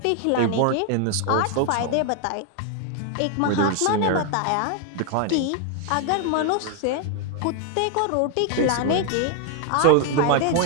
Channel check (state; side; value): different; both; correlation 0.00